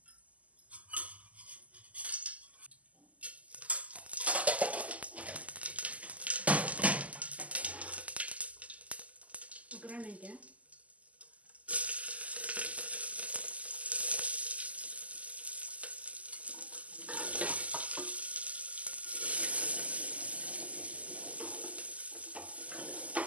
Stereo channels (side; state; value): left; late; 0.072 ms